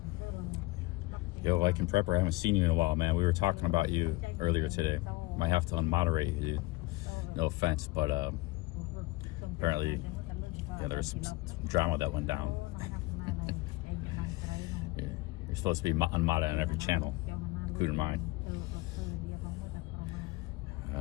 Yo, Viking Prepper, I haven't seen you in a while, man. We were talking about you earlier today. Might have to unmoderate you, dude. No offense, but apparently, yeah, there's some drama that went down. Yeah, you're supposed to be unmodded on every channel, including mine.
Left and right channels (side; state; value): right; quieter; 20.9 dB